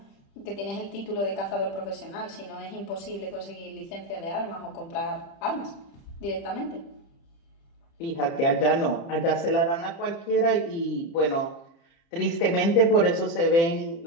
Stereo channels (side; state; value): right; late; 30 ms